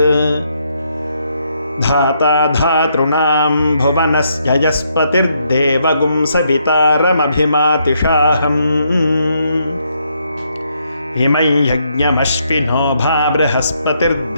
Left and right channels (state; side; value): inverted; both; correlation -0.75